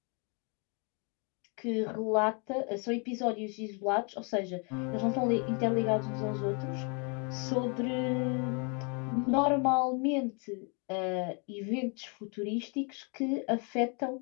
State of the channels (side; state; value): right; quieter; 36.0 dB